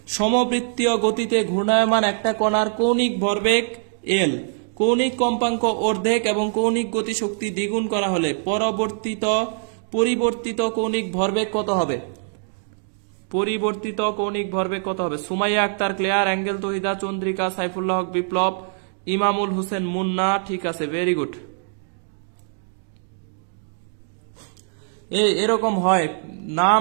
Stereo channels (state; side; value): silent; left; digital silence